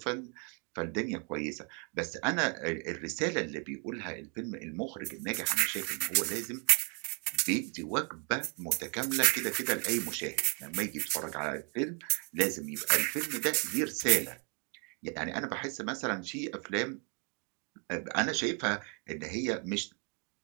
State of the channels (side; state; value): left; quieter; 37.2 dB